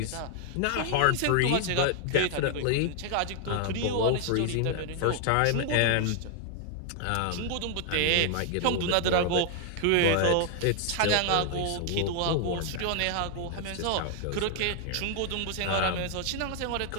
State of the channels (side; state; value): both; different; correlation 0.00